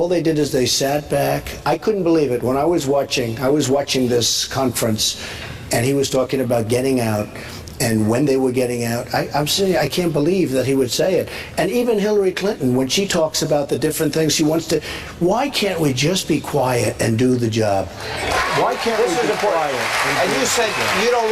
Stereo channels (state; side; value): identical; both; correlation 1.00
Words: they did is they sat back. I couldn't believe it. When I was watching this conference, and he was talking about getting out, and when they were getting out, I'm saying, I can't believe that he would say it. And even Hillary Clinton, when she talks about the different things she wants to, why can't we just be quiet and do the job? Why can't we be quiet? And you said you don't